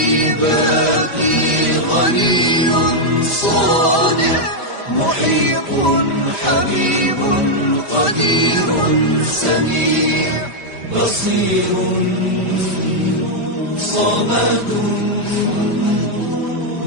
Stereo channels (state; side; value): late; right; 5.0 ms